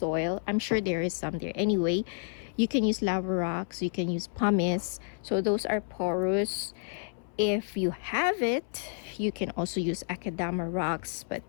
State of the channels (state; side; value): silent; right; 58 dB below the other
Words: I'm sure there is some there. Anyway, you can use lava rocks, you can use pumice. So those are porous. If you have it, you can also use akadama rocks, but